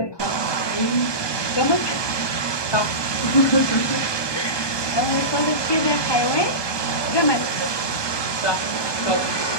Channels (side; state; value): right; late; 1.2 ms